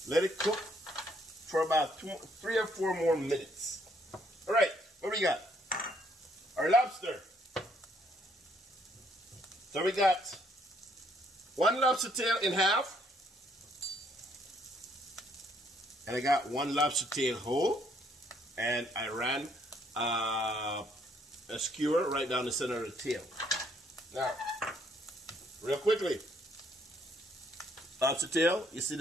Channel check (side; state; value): both; normal; correlation 0.68